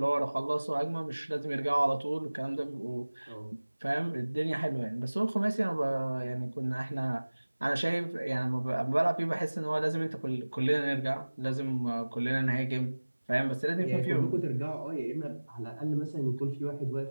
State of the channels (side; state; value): both; inverted; correlation -1.00